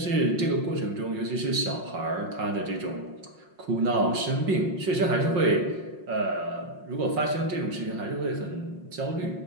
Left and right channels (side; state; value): left; late; 5.6 ms